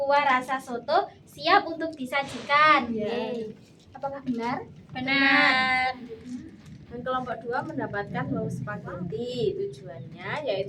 rasa soto siap untuk disajikan. Yeay. Apakah benar? Benar. Dan kelompok 2 mendapatkan wau spaghetti. Tujuannya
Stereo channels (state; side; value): identical; both; correlation 1.00